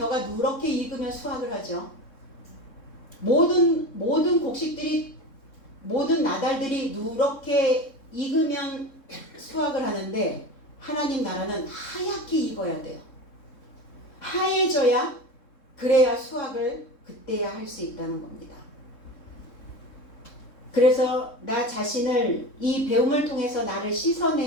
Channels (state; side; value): late; right; 3.7 ms